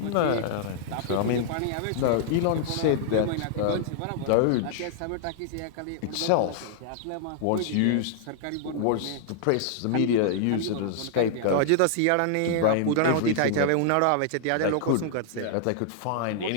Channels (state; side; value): different; both; correlation -0.01